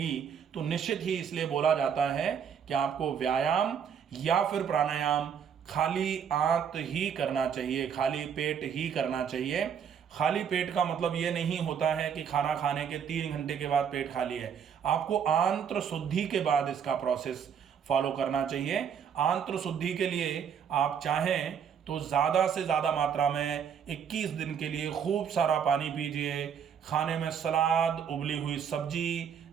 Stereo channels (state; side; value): quieter; left; 7.7 dB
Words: तो निश्चित ही इसलिए बोला जाता है कि आपको व्यायाम या फिर प्राणायाम खाली आंत ही करना चाहिए, खाली पेट ही करना चाहिए। खाली पेट का मतलब ये नहीं होता है कि खाना खाने के 3 घंटे के बाद पेट खाली है। आपको आंत्र शुद्धि के बाद इसका प्रोसेस फॉलो करना चाहिए। आंत्र शुद्धि के लिए आप चाहें तो ज़्यादा से ज़्यादा मात्रा में 21 दिन के लिए खूब सारा पानी पीजिए। खाने में सलाद, उबली हुई सब्जी,